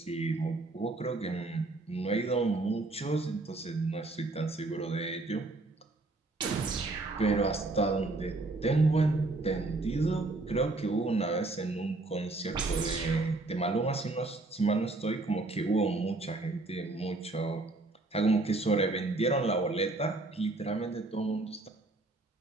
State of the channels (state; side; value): quieter; left; 3.1 dB